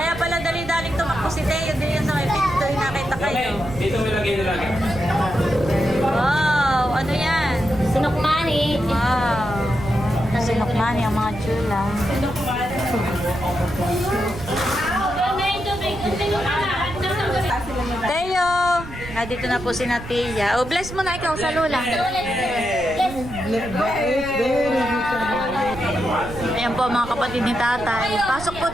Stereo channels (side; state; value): right; noise; rumble, 12 dB below the sound